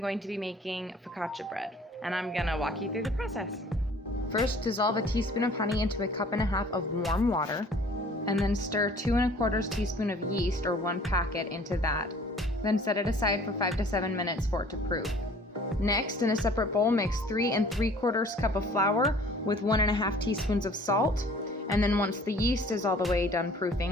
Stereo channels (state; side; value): normal; both; correlation 0.52